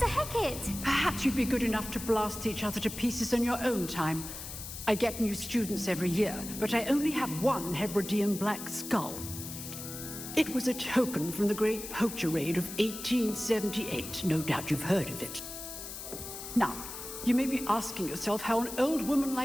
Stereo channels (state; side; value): noise; left; hiss, 9 dB below the sound